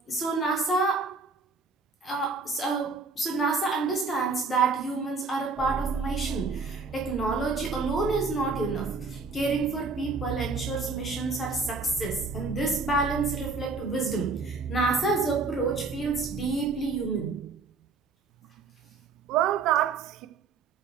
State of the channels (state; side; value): quieter; left; 4.2 dB